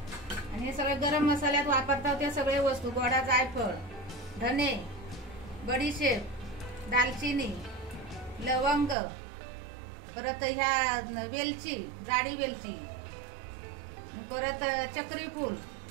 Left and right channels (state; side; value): drops out; left; at 9.0 s